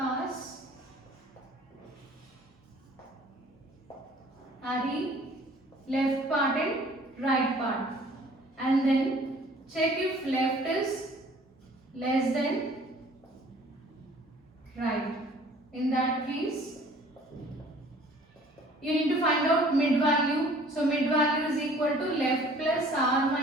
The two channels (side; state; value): both; normal; correlation 0.53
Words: array left part and right part, and then check if left is less than right. In that case, you need to find out mid value. So mid value is equal to left plus r